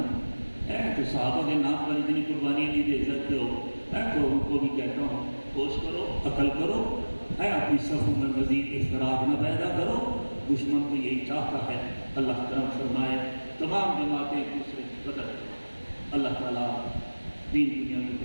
تو صحابہ کے نام پر اتنی قربانی نہیں دے سکتے ہو، تو ان کو بھی کہتا ہوں کوشش کرو، عقل کرو، اپنی صفوں میں مزید اختلاف نہ پیدا کرو، دشمن تو یہی چاہتا ہے۔ اللہ کرم فرمائے، تمام جماعتیں ایک دوسرے کی قدر کریں، اللہ تعالیٰ دین دنیا کی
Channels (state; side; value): inverted; both; correlation -1.00